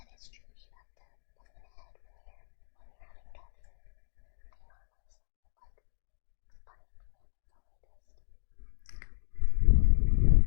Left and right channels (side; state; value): right; silent; digital silence